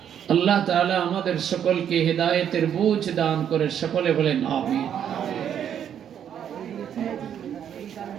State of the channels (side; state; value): left; quieter; 9.2 dB